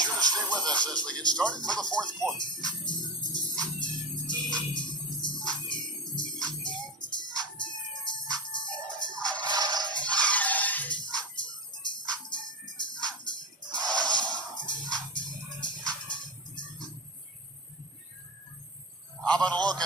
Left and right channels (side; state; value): both; normal; correlation 0.23